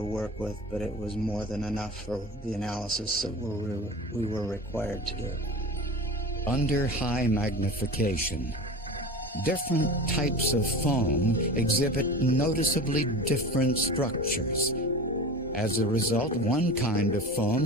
work with, but it was more than enough for the analysis that we were required to do. Under high magnification, different types of foam exhibit noticeably different structures. As a result, one kind of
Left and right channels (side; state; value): both; normal; correlation 0.33